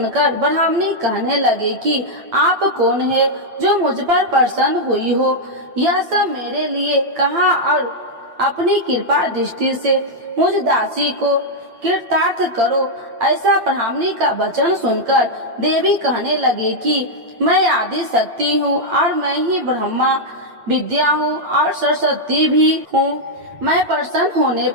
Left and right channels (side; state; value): left; late; 8.8 ms